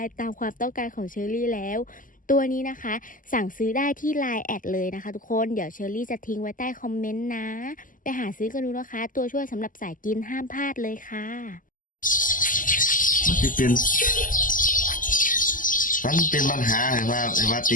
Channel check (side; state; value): right; late; 0.39 ms